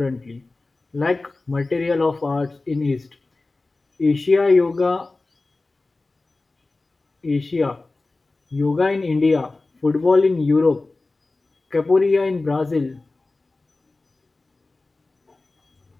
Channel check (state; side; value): quieter; right; 3.3 dB